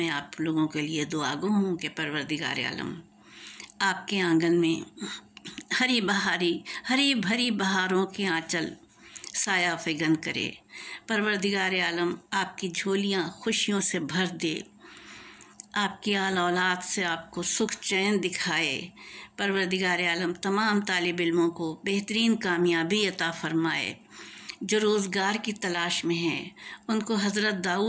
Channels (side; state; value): both; identical; correlation 1.00